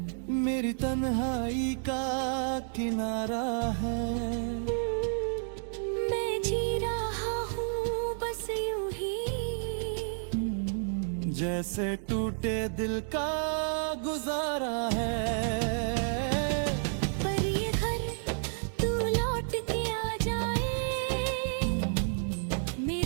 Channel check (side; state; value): left; silent; digital silence